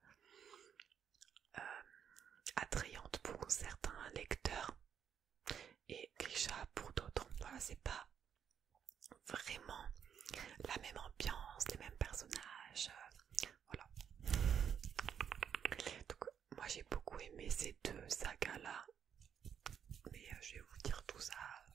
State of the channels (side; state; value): left; quieter; 8.2 dB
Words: attrayante pour certains lecteurs et Grisha pour d'autres. Voilà, c'est pas vraiment la même ambiance, les mêmes personnages, voilà. Donc moi j'ai beaucoup aimé ces 2 sagas là, mais je vais vous dire tout ça